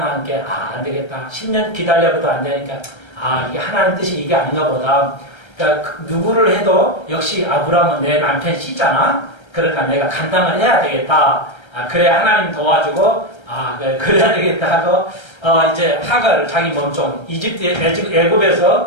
게 안 되겠다. 10년 기다려봐도 안 되니까 이게 하나님 뜻이 이게 아닌가 보다. 그러니까 누구를 해도 역시 아브라함은 내 남편 씨잖아. 그러니까 내가 감당을 해야 되겠다. 그래야 하나님 도와주고 그래야 되겠다 하고 이제 하가를 자기 몸종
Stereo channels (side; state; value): right; late; 1.3 ms